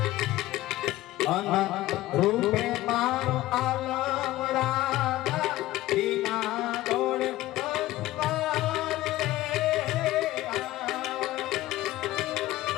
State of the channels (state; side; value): quieter; right; 16.3 dB